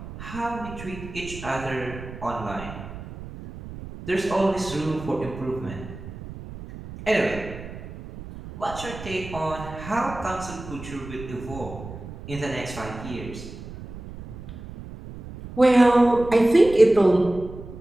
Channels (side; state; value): right; noise; rumble, 13 dB below the sound